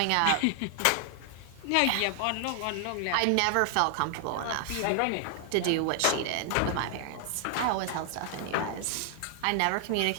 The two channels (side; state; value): both; different; correlation 0.00